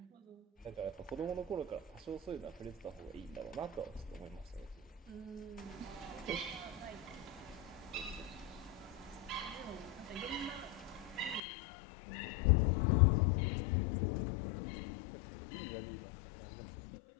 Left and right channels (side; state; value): right; drops out; at 11.4 s